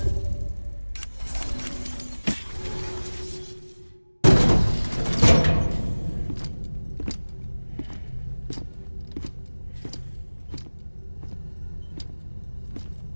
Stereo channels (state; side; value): inverted; both; correlation -1.00